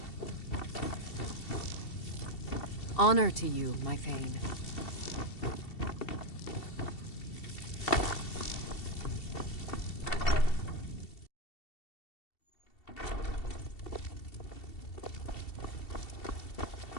Honor to you, my Thane.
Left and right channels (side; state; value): right; late; 2.7 ms